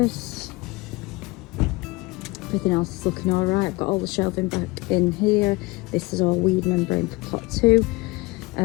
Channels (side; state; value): right; quieter; 23.6 dB